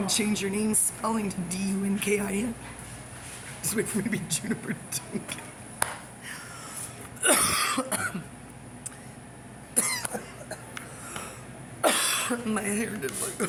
to change your name spelling to D-U-N-K-I-N. Just wait for me to be Juniper Dunkin. My hair didn't look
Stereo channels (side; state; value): both; identical; correlation 1.00